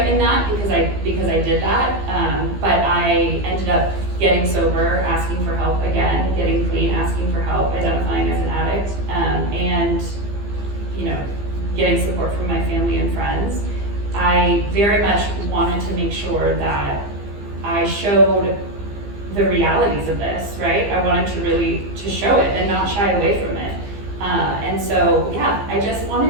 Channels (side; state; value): left; late; 15 ms